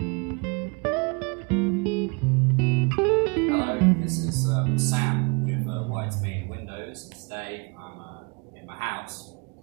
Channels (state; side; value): quieter; left; 32.2 dB